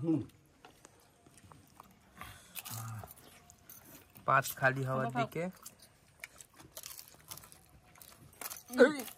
পাঁচ খালি হওয়ার দিকে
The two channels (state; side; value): identical; both; correlation 1.00